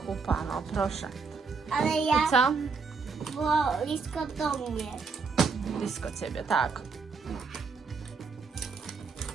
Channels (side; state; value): left; quieter; 4.9 dB